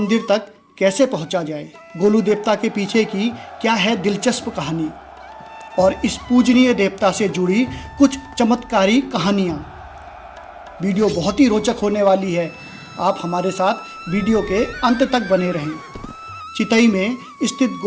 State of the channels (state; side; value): identical; both; correlation 1.00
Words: तक कैसे पहुंचा जाए, गोलू देवता के पीछे की क्या है दिलचस्प कहानी और इस पूजनीय देवता से जुड़ी कुछ चमत्कारी कहानियाँ। वीडियो बहुत ही रोचक होने वाली है। आप हमारे साथ वीडियो के अंत तक बने रहें। चितई में स्थित